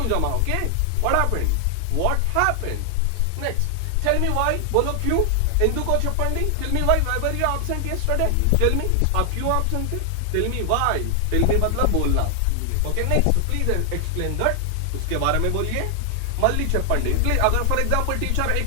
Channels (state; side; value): different; both; correlation 0.00